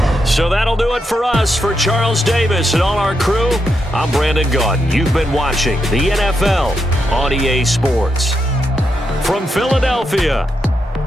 So that'll do it for us. For Charles Davis and all our crew, I'm Brandon Gaudin. You've been watching the NFL on EA Sports. From Philadelphia,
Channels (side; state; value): both; normal; correlation 0.83